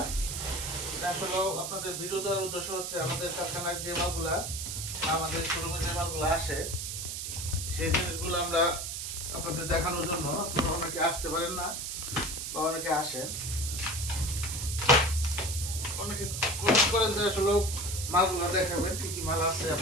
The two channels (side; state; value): right; noise; hiss, 4 dB below the sound